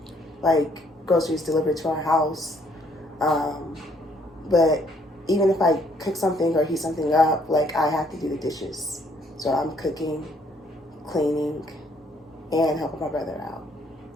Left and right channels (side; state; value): both; normal; correlation 0.66